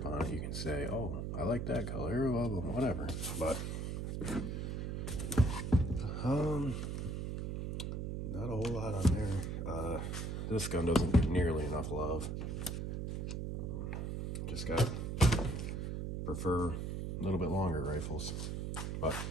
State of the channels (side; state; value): right; noise; hum, 3 dB below the sound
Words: on it, you can say, oh, I like that color, well, whatever. But not a whole lot on there. This gun doesn't get nearly enough love. Just got prefer a little bit longer rifles. But